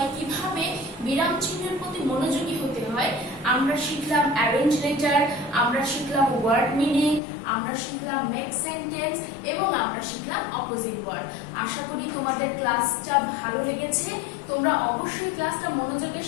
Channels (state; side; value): drops out; right; at 7.2 s